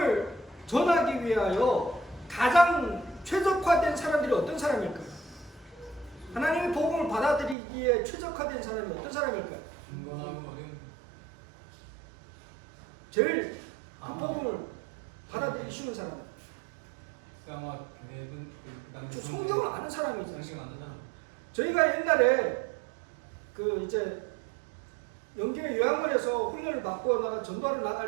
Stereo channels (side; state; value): left; drops out; at 7.6 s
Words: 전하기 위하여 가장 최적화된 사람들이 어떤 사람일까요? 하나님의 복음을 받아들이기에 최적화된 사람이 어떤 사람일까요? 제일 그 복음을 받아들이기 쉬운 사람. 성경을 아는 사람이잖아요. 저희가 옛날에 그 이제 영계 요양원에서 훈련을 받고 나가 전도하러